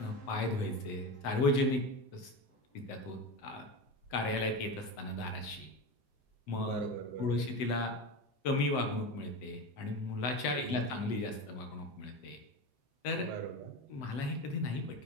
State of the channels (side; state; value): right; late; 7.8 ms